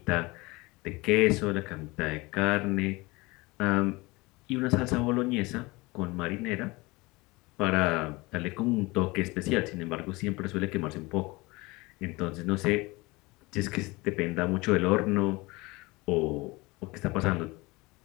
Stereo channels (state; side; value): quieter; right; 23.3 dB